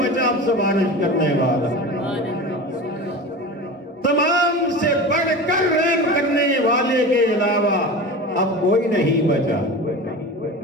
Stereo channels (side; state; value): both; normal; correlation 0.31